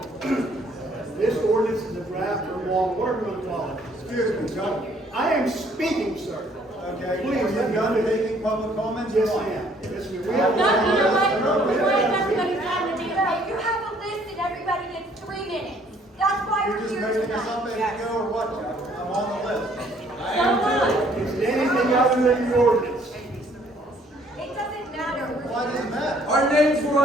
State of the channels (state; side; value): normal; both; correlation 0.62